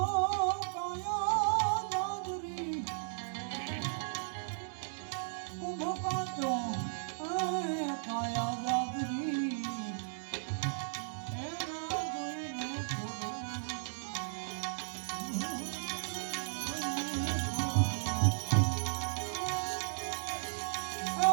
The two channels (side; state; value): left; silent; digital silence